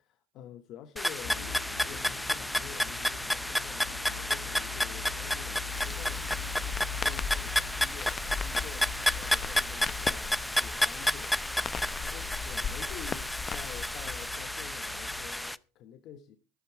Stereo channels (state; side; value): normal; both; correlation 0.93